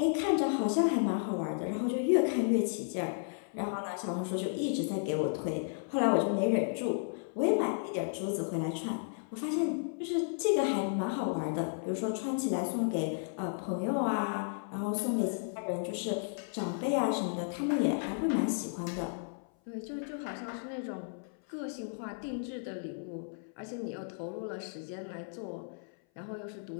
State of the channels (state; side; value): silent; right; 55 dB below the other